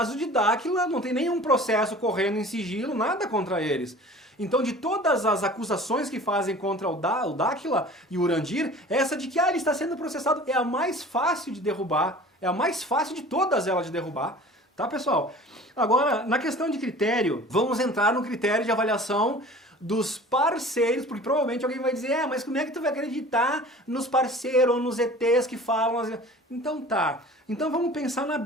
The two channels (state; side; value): normal; both; correlation 0.43